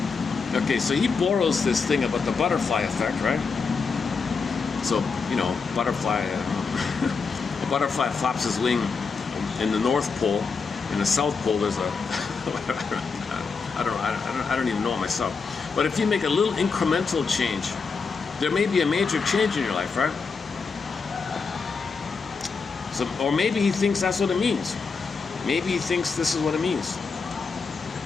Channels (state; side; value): quieter; right; 5.0 dB